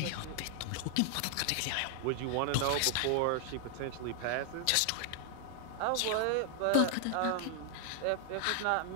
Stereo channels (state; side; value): different; both; correlation 0.00